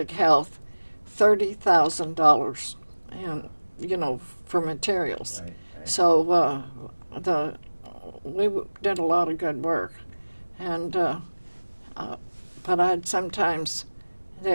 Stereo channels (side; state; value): both; inverted; correlation -1.00